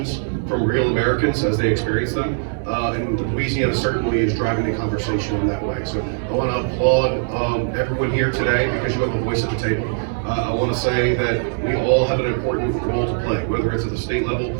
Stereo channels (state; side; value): silent; left; digital silence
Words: from real Americans as they experience them. And Louisiana certainly is driving the conversation in that way. So I want to applaud everyone here today because you have a voice at the table. I want to say that we all have an important role to play, whether it's at the state level,